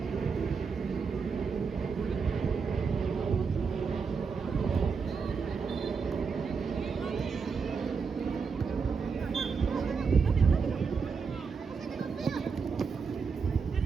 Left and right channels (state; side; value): quieter; left; 5.4 dB